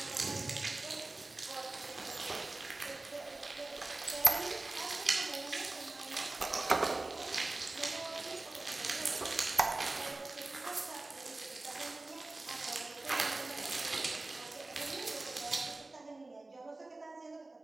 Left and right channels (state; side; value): quieter; left; 3.1 dB